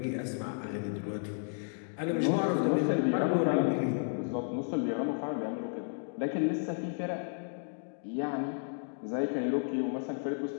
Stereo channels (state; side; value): silent; right; digital silence